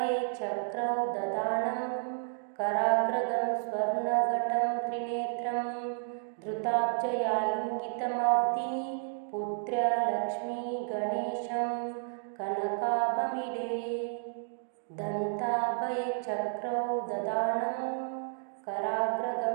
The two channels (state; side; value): silent; left; digital silence